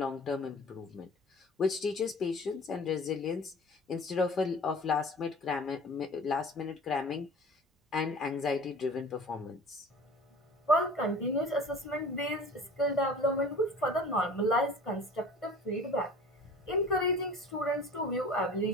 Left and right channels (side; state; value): both; normal; correlation 0.42